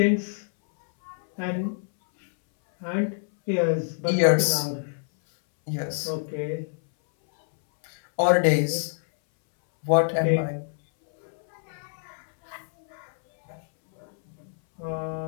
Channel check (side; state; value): right; silent; 61 dB below the other